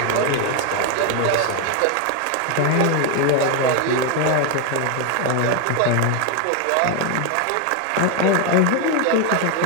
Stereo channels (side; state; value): both; different; correlation 0.01